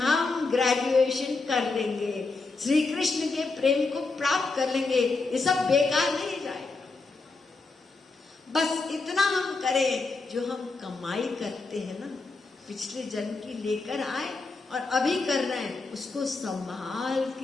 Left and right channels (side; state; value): right; quieter; 3.8 dB